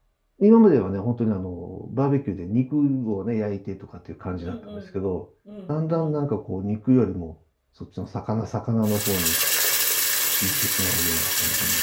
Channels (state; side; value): identical; both; correlation 1.00